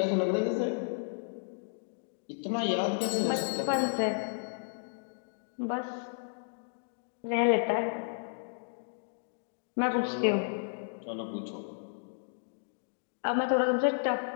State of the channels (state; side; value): silent; right; digital silence